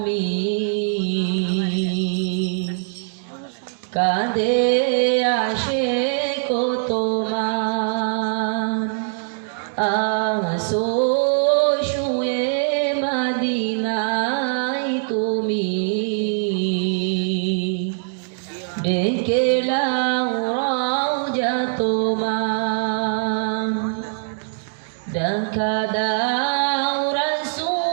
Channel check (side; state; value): left; silent; digital silence